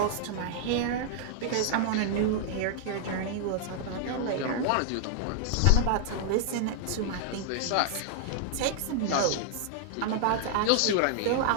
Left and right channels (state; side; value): different; both; correlation -0.01